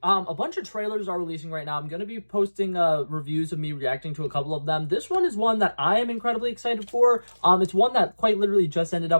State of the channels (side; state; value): both; inverted; correlation -1.00